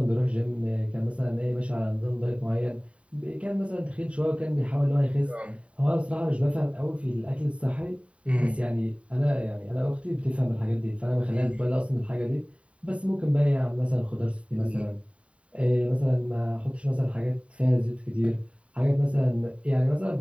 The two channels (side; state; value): left; late; 0.063 ms